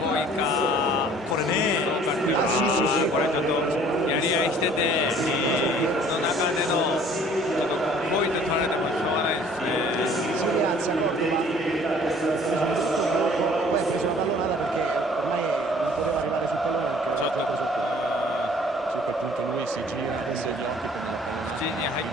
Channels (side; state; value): both; normal; correlation 0.54